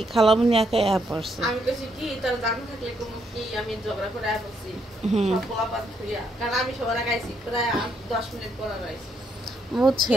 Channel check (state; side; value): normal; both; correlation 0.75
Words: খালামনি একাই পড়ছে। আমি কইছি কি তোর জানা থাকলে কোন কি আমি ঝগড়া করে আসছি, সব পোলাপাত হইয়া, কারণ আমি সবার আগে আইছি প্রায় 10 মিনিট পর আইছি,